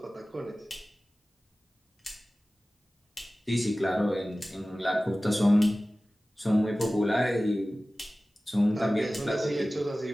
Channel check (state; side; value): normal; both; correlation 0.97